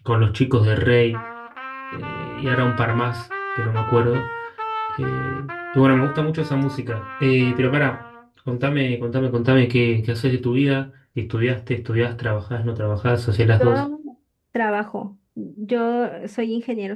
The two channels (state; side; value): identical; both; correlation 1.00